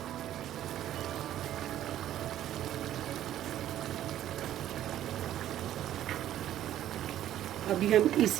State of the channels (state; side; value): quieter; left; 12.1 dB